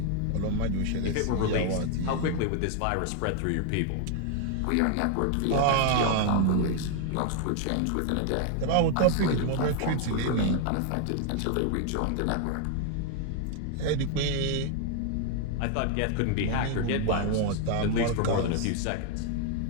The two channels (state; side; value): different; both; correlation 0.00